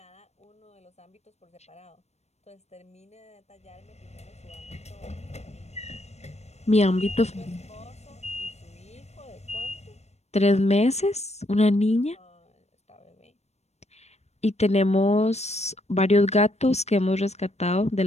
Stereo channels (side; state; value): right; late; 0.31 ms